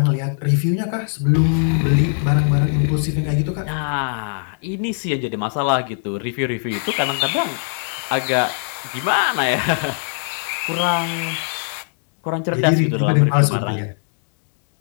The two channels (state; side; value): silent; right; digital silence